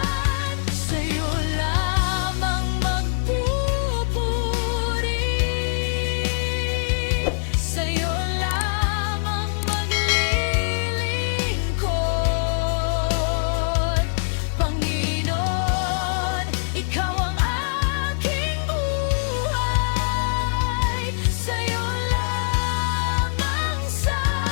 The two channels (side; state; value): right; silent; 62 dB below the other